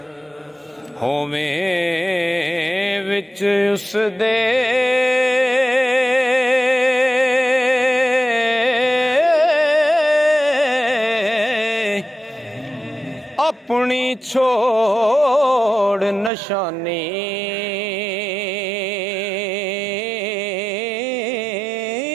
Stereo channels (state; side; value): drops out; left; at 16.3 s